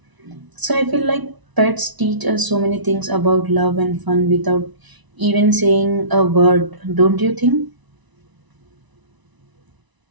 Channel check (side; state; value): left; late; 1.0 ms